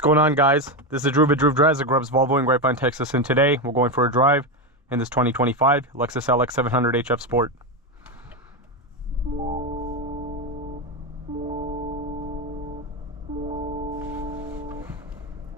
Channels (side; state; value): both; normal; correlation 0.11